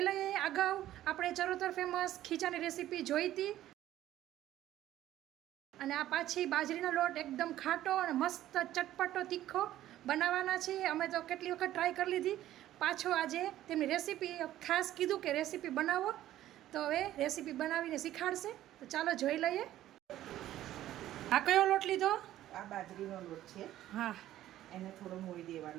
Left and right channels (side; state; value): left; quieter; 13.5 dB